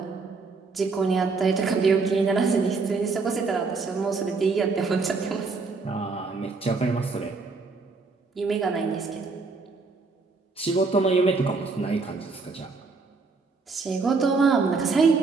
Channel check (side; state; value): left; quieter; 4.2 dB